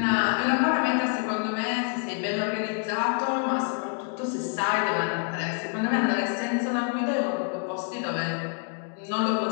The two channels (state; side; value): quieter; right; 39.3 dB